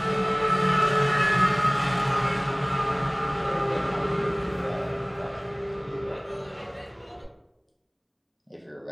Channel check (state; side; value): identical; both; correlation 1.00